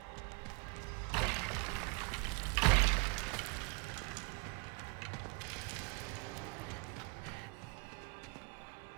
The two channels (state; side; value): quieter; left; 34.5 dB